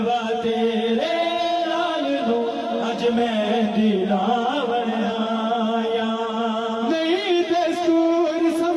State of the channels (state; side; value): identical; both; correlation 1.00